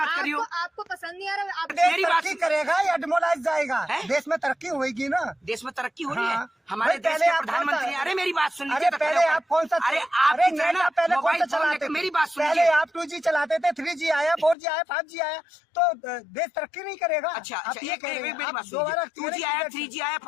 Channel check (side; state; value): right; drops out; at 14.6 s